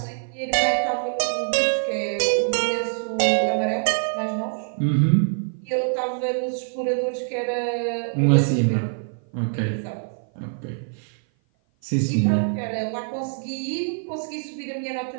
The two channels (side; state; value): left; silent; 55 dB below the other